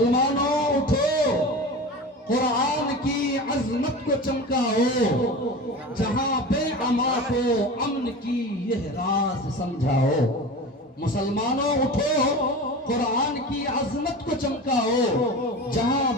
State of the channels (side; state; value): both; normal; correlation 0.32